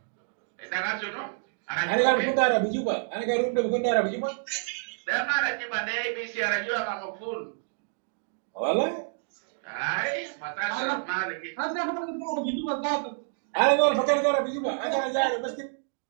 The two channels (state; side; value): silent; left; digital silence